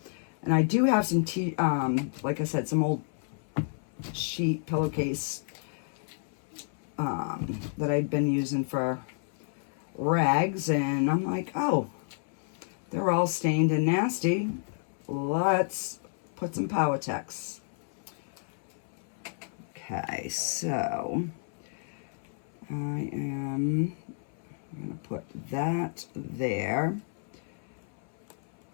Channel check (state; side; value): silent; right; 57 dB below the other